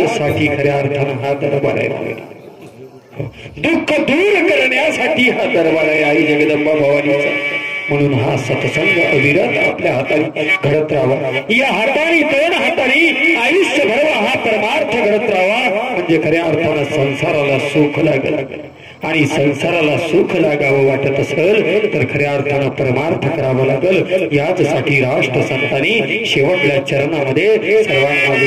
साठी खऱ्या अर्थानं हा दरबार आहे. दुःख दूर करण्यासाठी हा दरबार आहे आई जगदंबा भवानीचा. म्हणून हा सत्संग अविरत आपल्या हाताने घडत राहावा. या हाताने दोन हाताने आयुष्यभर हा परमार्थ घडत राहावा. म्हणजे खऱ्या अर्थानं संसाराला सुख लागेल. आणि संसाराला सुख लागावं वाटत असेल तर खऱ्या अर्थानं परमार्थ करावं लागेल. याचसाठी राष्ट्र संतांनी शेवटल्या चरणामध्ये सर्वांना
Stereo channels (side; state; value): both; identical; correlation 1.00